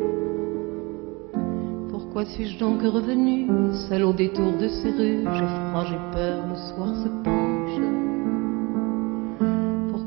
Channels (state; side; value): quieter; left; 26.3 dB